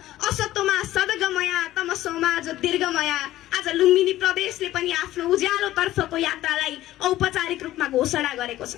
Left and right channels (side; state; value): right; quieter; 14.8 dB